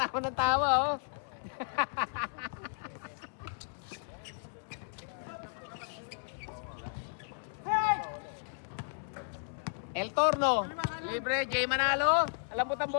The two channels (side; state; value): right; silent; 55 dB below the other